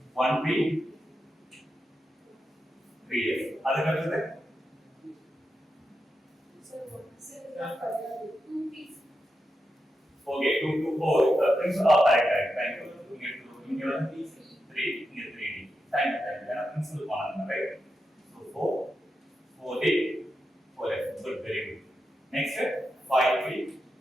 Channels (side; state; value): both; normal; correlation 0.87